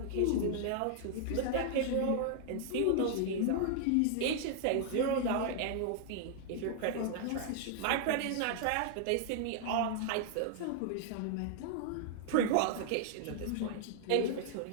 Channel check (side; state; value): both; different; correlation -0.01